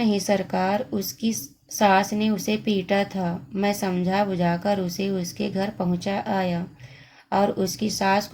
सरकार, उसकी सास ने उसे पीटा था। मैं समझा बुझाकर उसे उसके घर पहुंचा आया और उसकी सास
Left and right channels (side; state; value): both; identical; correlation 1.00